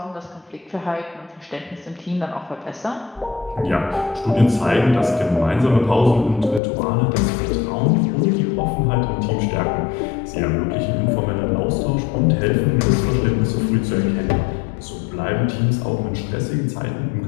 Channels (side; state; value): right; drops out; at 6.6 s